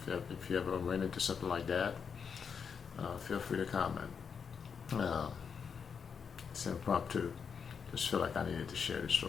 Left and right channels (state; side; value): quieter; right; 6.4 dB